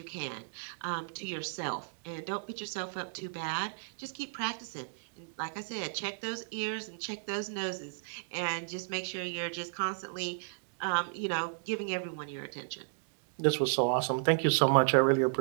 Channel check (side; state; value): left; silent; digital silence